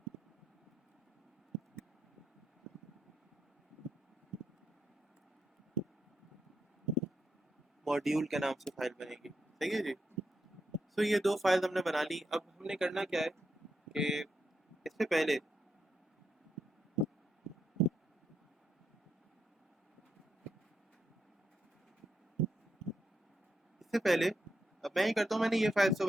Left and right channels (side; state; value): both; normal; correlation 0.83